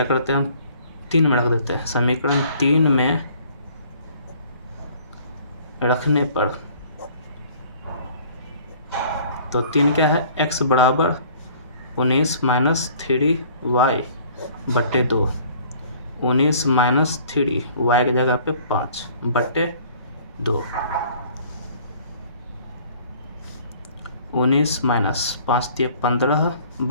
करते हैं हम, 3 में रख देते हैं। समीकरण 3 में रखने पर, तो 3 क्या है, x बराबर 19 - 3y बटे 2, 19 - 3 y की जगह पे 5 बटे 2, 19 माइनस 5 दिए 15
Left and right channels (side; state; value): both; inverted; correlation -0.53